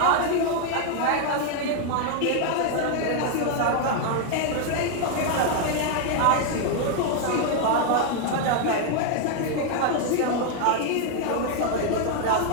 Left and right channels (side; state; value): both; different; correlation 0.00